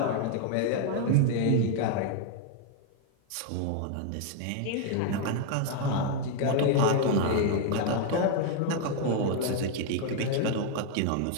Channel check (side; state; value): both; different; correlation 0.00